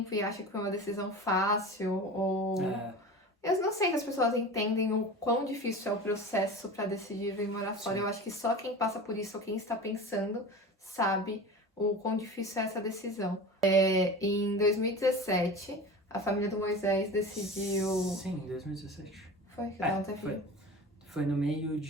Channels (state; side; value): normal; both; correlation 0.33